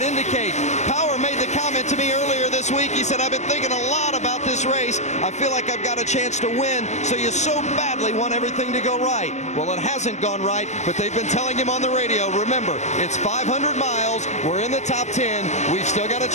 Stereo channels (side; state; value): right; late; 0.34 ms